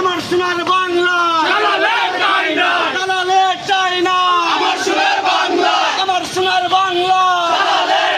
সোনার বাংলা, দালালের নাই নাই, দালালের চাই না, আমার সুরের বাংলা, আমার সোনার বাংলা, দালালের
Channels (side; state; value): both; identical; correlation 1.00